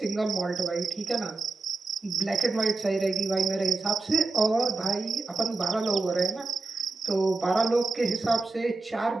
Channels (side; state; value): left; quieter; 3.6 dB